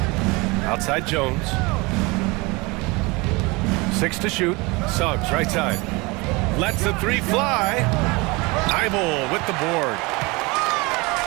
Outside Jones. 6 to shoot. Suggs right side. Lets the 3 fly. Thybulle with the board.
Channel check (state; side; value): quieter; left; 25.4 dB